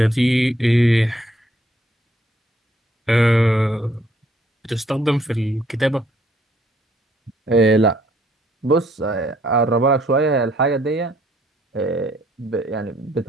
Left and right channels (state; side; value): normal; both; correlation 0.66